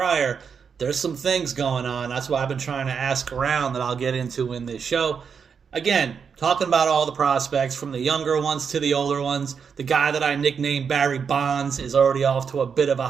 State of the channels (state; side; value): quieter; left; 6.4 dB